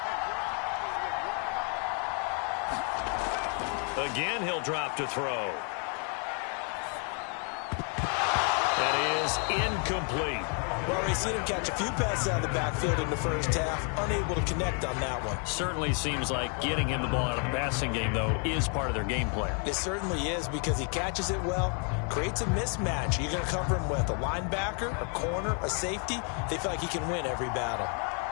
Again, he'll drop to throw. That is incomplete. Well, we've seen him catch a few passes out of the backfield in the first half, unable to connect on that one. Certainly seems like getting him the ball out of the passing game, though, is part of their game plan. It certainly is, because he catches it well, creates a mismatch. You're going to cover him with a linebacker, a corner, a safety. They feel like he can win every battle.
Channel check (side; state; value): right; quieter; 39.5 dB